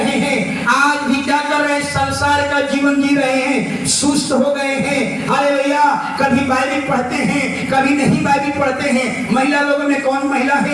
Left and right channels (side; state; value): both; identical; correlation 1.00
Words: हैं, आज भी क्या कर रहे हैं, संसार का जीवन जी रहे हैं, सुस्त हो गए हैं, हालेलुया, कभी बाइबल पढ़ते हैं कभी नहीं बाइबल पढ़ते हैं। महिला लोगों में कौन महिला